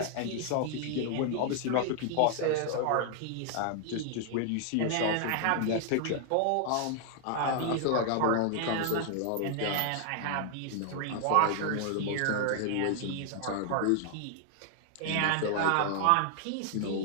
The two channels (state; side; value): different; both; correlation 0.00